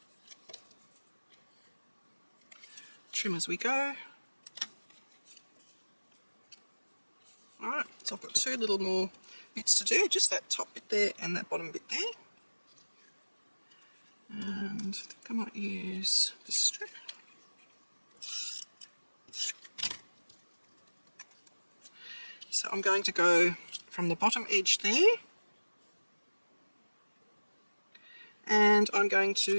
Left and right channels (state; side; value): inverted; both; correlation -1.00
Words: Trim as we go. Alright, so I've got two little more bits to do, just that top bit there and that bottom bit there. And I think I might use this strip. So I'm going to go from the bottom edge there, and I'm going